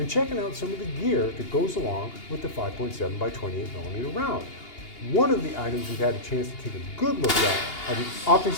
checking out some of the gear that goes along with the 5.7 by 28mm round. One of the items we've had a chance to take a good look at are the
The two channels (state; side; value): late; right; 2.8 ms